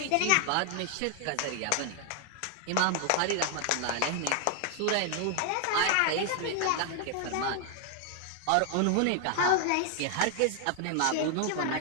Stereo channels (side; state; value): both; different; correlation 0.00